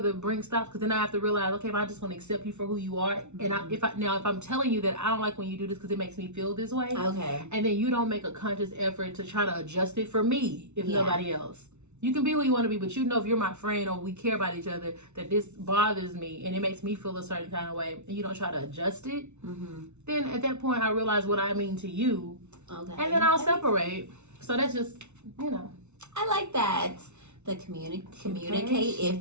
bring stops. Because then I have to realize, okay, if I just want to accept you for who you are, and if I'm telling you that I don't like when you do this because it makes me feel this way, and then you don't make a conscious effort to try to adjust it for me, if nobody else. You can be who you want to be, but you know if you're my friend or we care about each other, that this bothers me and it makes me feel a certain kind of way, and you don't try to adjust it, then at that point I realize what I mean to you, and then I'll separate. So that's just, I like that. The communicate if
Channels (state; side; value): late; left; 0.82 ms